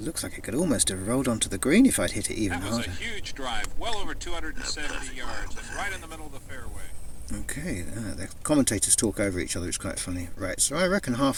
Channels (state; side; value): identical; both; correlation 1.00